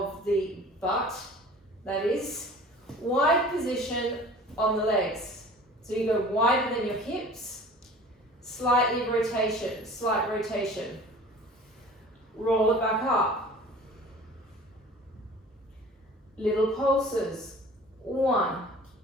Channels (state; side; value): normal; both; correlation 0.44